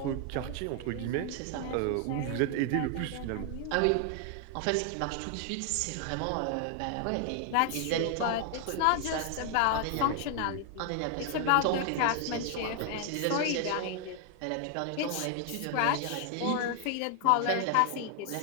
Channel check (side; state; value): both; different; correlation 0.00